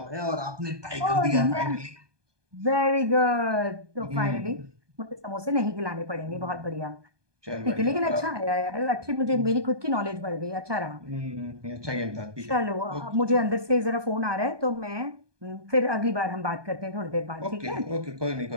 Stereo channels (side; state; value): left; late; 1.2 ms